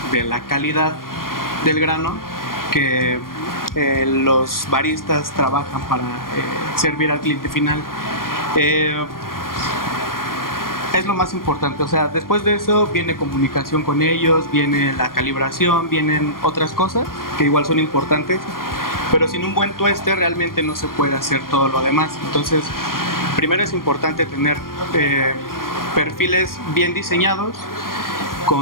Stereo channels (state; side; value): late; right; 0.91 ms